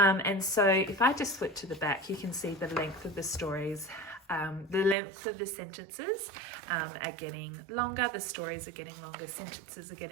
so if I just flip to the back, you can see the length of the stories. The length of the sentences are getting longer, the stories are getting longer, sentences are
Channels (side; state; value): left; drops out; at 5.0 s